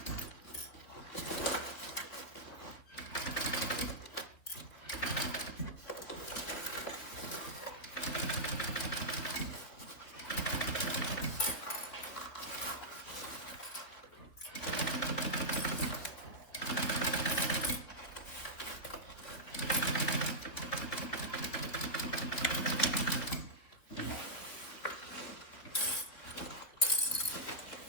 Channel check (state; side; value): late; right; 3.7 ms